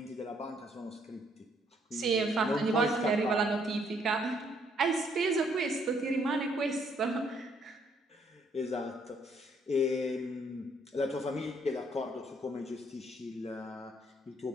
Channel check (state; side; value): normal; both; correlation 0.68